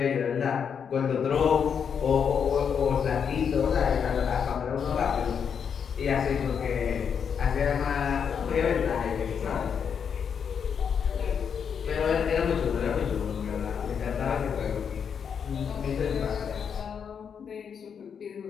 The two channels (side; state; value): right; quieter; 7.1 dB